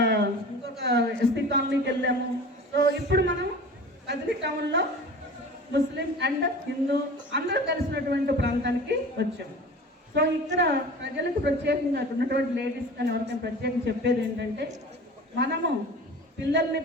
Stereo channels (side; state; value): both; normal; correlation 0.39